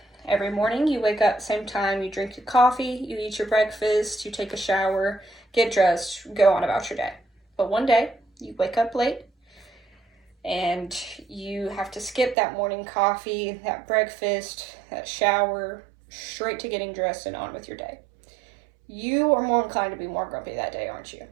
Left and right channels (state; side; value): drops out; left; at 12.4 s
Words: Every morning you wake up same time, you drink your coffee, you eat your breakfast, you take a shower, get dressed, go on about your day. But one day, you wake up late, and you have to skip that morning coffee, that breakfast, that shower, straight to getting dressed and on with your day. You are more inclined to be more grumpy that day, aren't you?